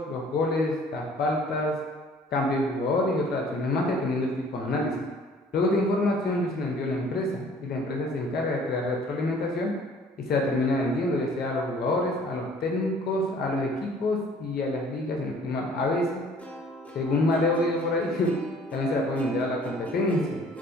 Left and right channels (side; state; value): both; normal; correlation 0.54